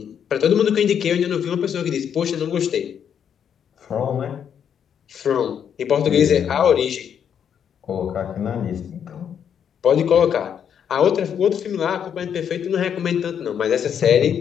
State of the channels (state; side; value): quieter; right; 8.3 dB